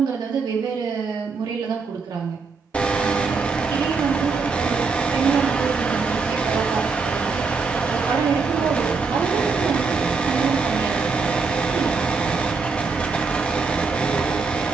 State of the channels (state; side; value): quieter; left; 4.6 dB